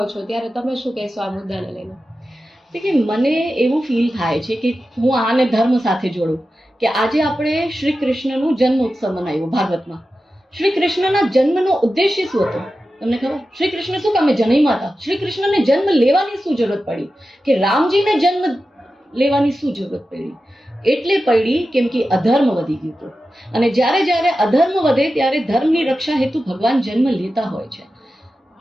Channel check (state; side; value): normal; both; correlation 0.92